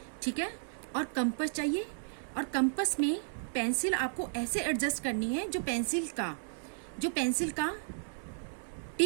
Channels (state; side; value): silent; left; 55 dB below the other